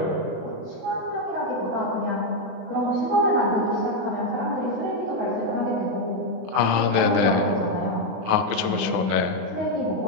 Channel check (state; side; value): late; left; 36 ms